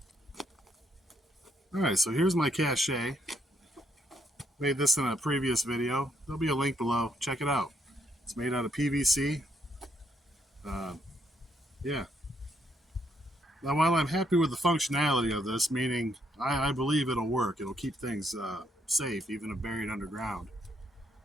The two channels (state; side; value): normal; both; correlation 0.74